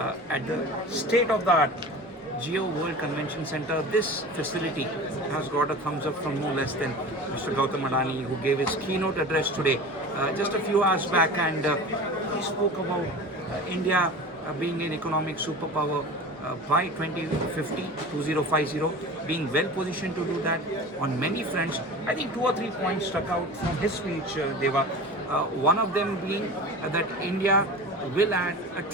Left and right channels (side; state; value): both; normal; correlation 0.34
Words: at the state-of-the-art Geo World Convention Center. This facility has got a thumbs up from no less than Mr. Gautam Adani, who gave his keynote address today just a few hours back, and he spoke about India being an economic superpower by 2050, being well positioned to do that on many fronts. I think 2 or 3 points stuck out from his speech, Deva. One of them being that India will add $1